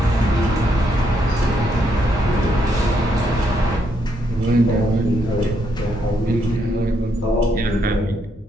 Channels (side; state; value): both; normal; correlation 0.76